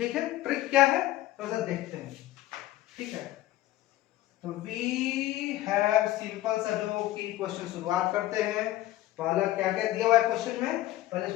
है। ट्रिक क्या है थोड़ा सा देखते हैं, ठीक है। तो वी हैव सिंपल सा जो कि क्वेश्चन शुरुआत करते हैं, पहला क्या क्या दिया हुआ है क्वेश्चन में पहले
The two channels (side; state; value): right; quieter; 15.4 dB